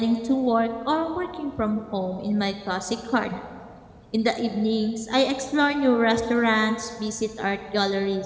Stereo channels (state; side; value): identical; both; correlation 1.00